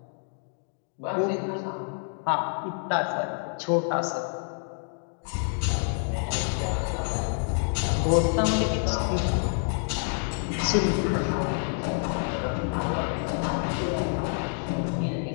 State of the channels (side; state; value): right; silent; 60 dB below the other